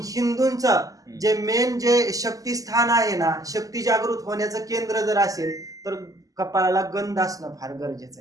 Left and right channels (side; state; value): left; late; 0.17 ms